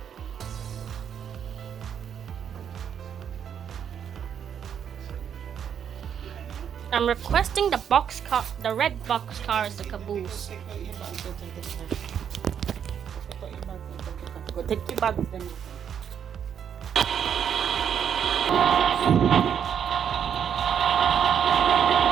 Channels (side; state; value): left; quieter; 8.3 dB